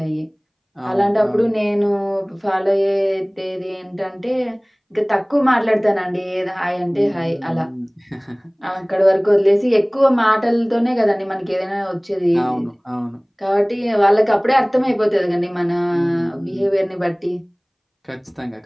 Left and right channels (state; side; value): identical; both; correlation 1.00